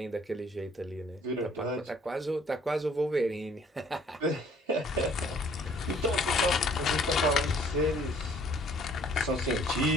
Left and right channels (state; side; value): normal; both; correlation 0.58